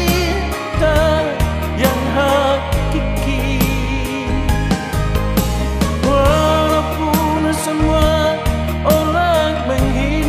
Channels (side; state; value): both; identical; correlation 1.00